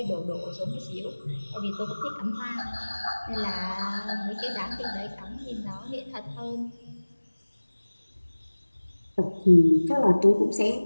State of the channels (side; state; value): both; inverted; correlation -1.00